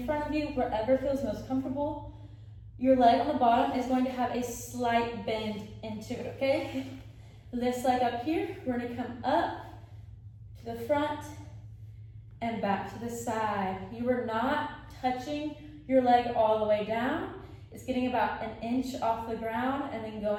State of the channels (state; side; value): identical; both; correlation 1.00